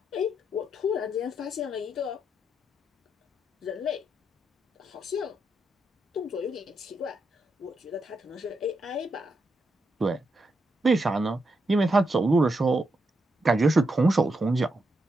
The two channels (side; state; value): both; normal; correlation 0.82